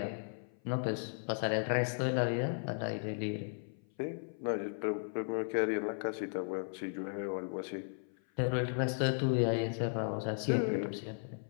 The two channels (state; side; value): silent; right; 54 dB below the other